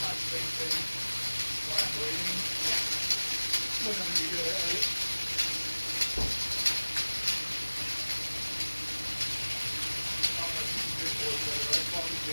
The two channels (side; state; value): both; inverted; correlation -1.00